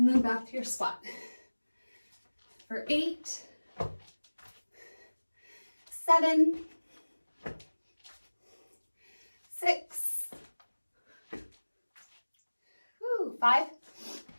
then back to your squat. For 8, 7, 6. Woo, 5.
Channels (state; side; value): inverted; both; correlation -1.00